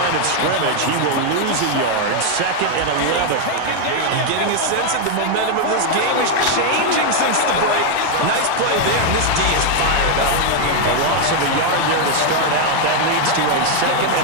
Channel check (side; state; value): both; different; correlation 0.01